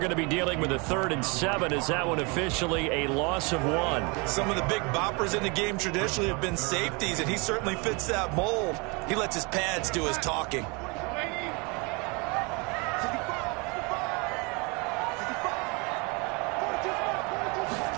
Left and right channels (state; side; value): quieter; left; 29.7 dB